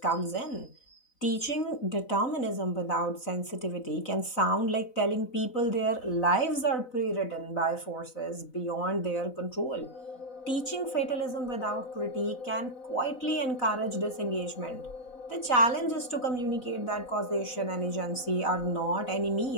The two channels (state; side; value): late; right; 4.0 ms